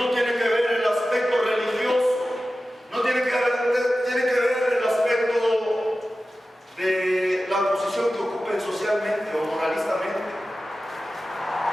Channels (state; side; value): normal; both; correlation 0.94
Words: tiene que ver el aspecto religioso, no tiene que ver el aspecto de la posición que ocupen socialmente o moralistamente,